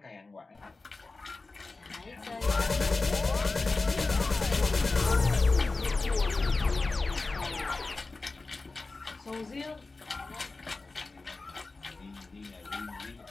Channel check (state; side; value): quieter; right; 3.6 dB